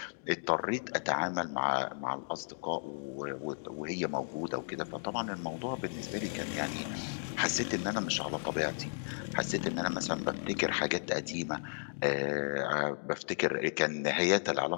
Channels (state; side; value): silent; right; digital silence